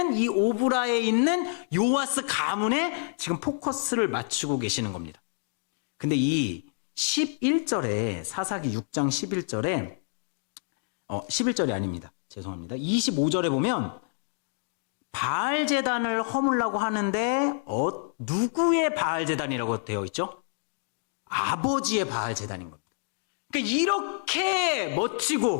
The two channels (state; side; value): silent; right; 60 dB below the other